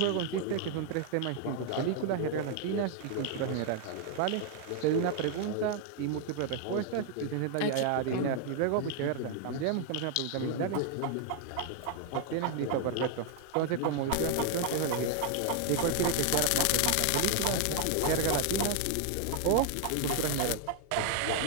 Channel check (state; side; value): different; both; correlation 0.00